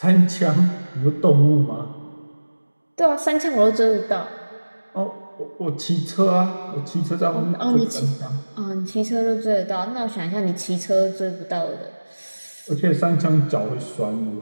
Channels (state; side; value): inverted; both; correlation -1.00